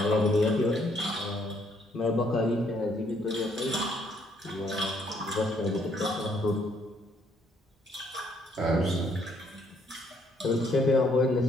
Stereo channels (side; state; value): both; normal; correlation 0.68